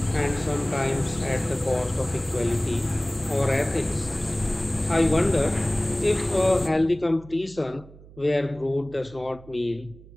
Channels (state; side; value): noise; right; hum, 20 dB below the sound